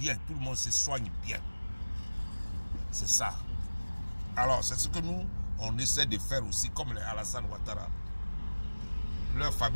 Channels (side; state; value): both; inverted; correlation -1.00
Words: Tout le monde se soigne bien. C'est ça. Alors, c'est ce que nous, on essaie de faire aussi, comme les Alassane Ouattara. Leur